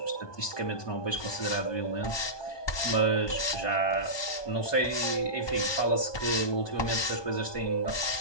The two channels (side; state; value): right; late; 1.2 ms